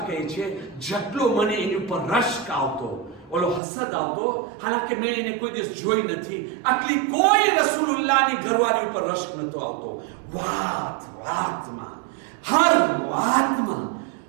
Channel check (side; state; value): left; drops out; at 3.6 s